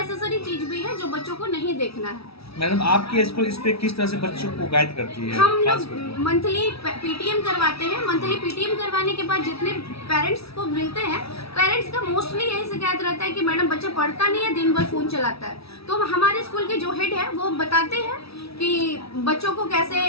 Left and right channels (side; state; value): right; late; 0.76 ms